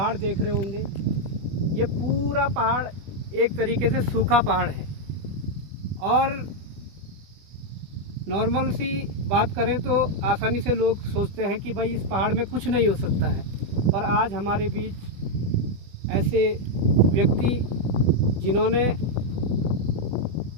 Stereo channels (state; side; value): late; left; 20 ms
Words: देख रहे होंगे। ये पूरा पहाड़ एक तरीके से सूखा पहाड़ है और नॉर्मल सी बात करें तो आसानी से लोग सोचते हैं कि भाई इस पहाड़ में कुछ नहीं हो सकता है, पर आज हमारे बीच ऐसे व्यक्ति जिन्होंने